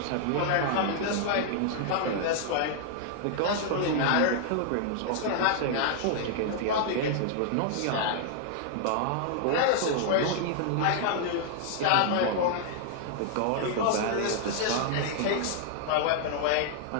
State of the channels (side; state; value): both; different; correlation -0.01